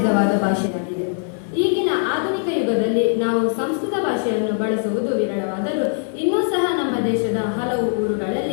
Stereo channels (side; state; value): right; silent; 65 dB below the other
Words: ಭಾಷೆಯಾಗಿದೆ. ಈಗಿನ ಆಧುನಿಕ ಯುಗದಲ್ಲಿ ನಾವು ಸಂಸ್ಕೃತ ಭಾಷೆಯನ್ನು ಬಳಸುವುದು ವಿರಳವಾದರೂ ಇನ್ನೂ ಸಹ ನಮ್ಮ ದೇಶದ ಹಲವು